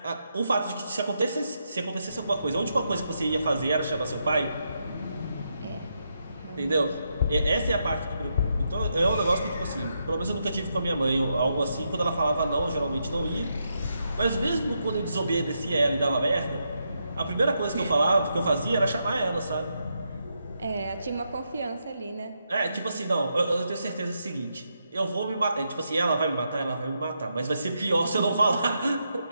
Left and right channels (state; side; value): inverted; both; correlation -0.82